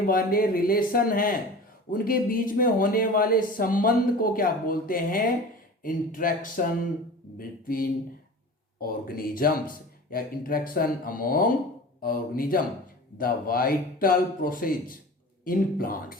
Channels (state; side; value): normal; both; correlation 0.37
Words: वाले रिलेशन हैं, उनके बीच में होने वाले संबंध को क्या बोलते हैं, इंटरेक्शन बिटवीन ऑर्गेनिजम्स या interaction among organism. The vital process in plants,